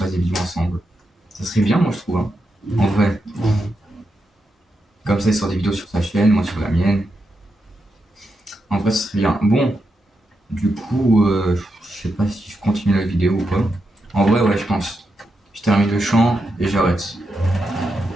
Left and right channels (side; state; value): both; normal; correlation 0.85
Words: des vidéos ensemble. Ça serait bien, moi, je trouve. Hein. En vrai. Comme ça, il sort des vidéos sur sa chaîne, moi sur la mienne. En vrai, ce serait bien. Bon, du coup, je sais pas si je continue la vidéo ou pas. En vrai, ouais, je pense. Je termine le chant et j'arrête.